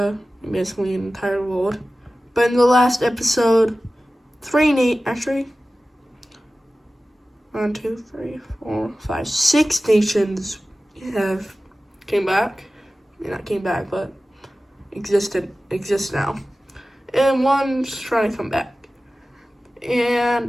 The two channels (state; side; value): normal; both; correlation 0.96